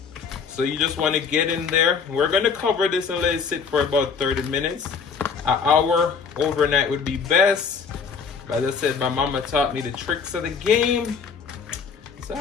So you just want to get in there. We're going to cover this and let it sit for about 30 minutes. An hour overnight would be best. But as I said, my mama taught me the tricks of the game, so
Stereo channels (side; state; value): right; quieter; 5.8 dB